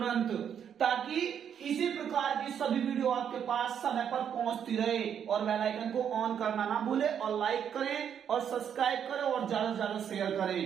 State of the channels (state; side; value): quieter; left; 8.5 dB